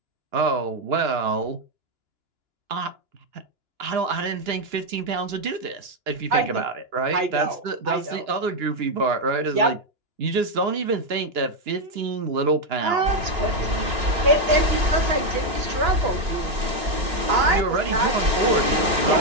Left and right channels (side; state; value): left; late; 2.9 ms